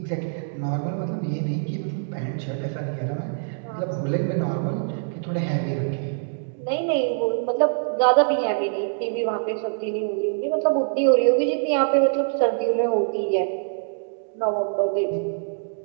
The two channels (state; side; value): silent; left; digital silence